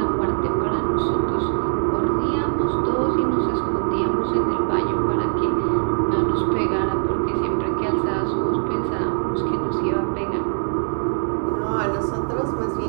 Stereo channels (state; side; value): silent; left; digital silence